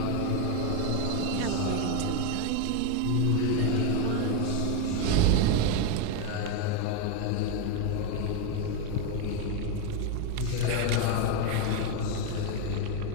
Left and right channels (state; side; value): different; both; correlation 0.02